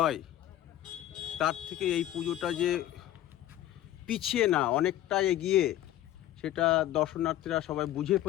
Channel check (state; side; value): quieter; right; 13.2 dB